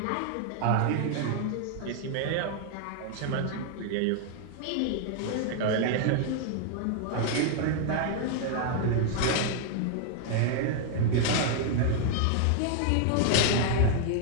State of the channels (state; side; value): different; both; correlation 0.00